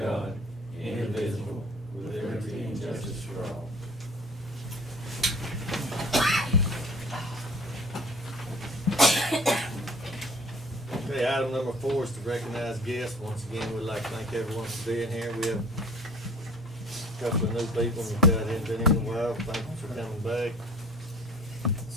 indivisible, with liberty and justice for all. Okay, item number 4 is to recognize guests. Once again, we'd like to thank everyone for being here. We have a couple of new people that hadn't been in a while. Thank you for coming back.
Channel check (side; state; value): both; normal; correlation 0.47